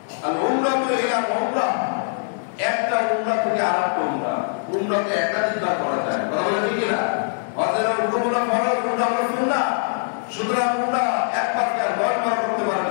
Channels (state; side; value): silent; right; 64 dB below the other